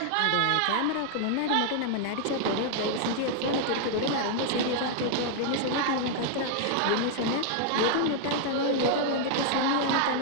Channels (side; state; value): both; different; correlation -0.01